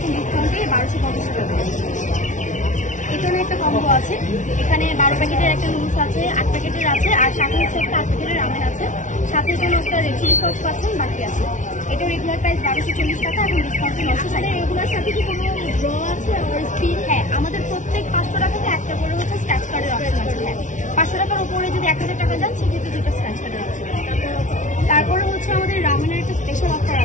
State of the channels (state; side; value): late; right; 0.37 ms